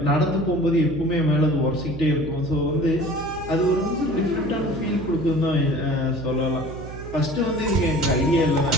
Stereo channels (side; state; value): right; noise; hum, 12 dB below the sound